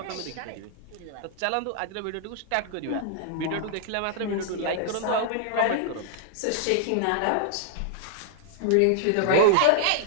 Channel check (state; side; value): different; both; correlation -0.01